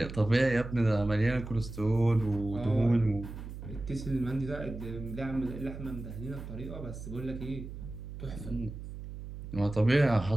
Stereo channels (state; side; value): noise; right; hum, 10 dB below the sound